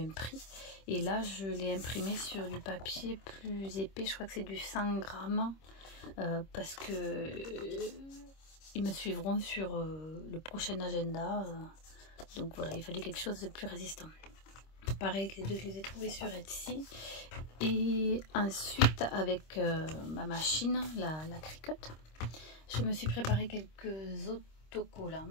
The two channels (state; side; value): late; right; 26 ms